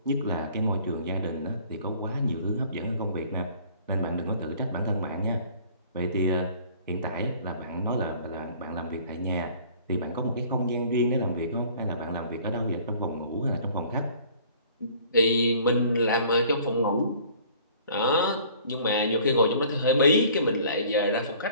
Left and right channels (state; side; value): inverted; both; correlation -0.52